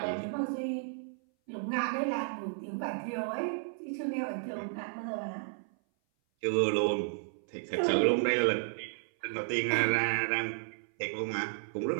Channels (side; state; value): left; silent; 56 dB below the other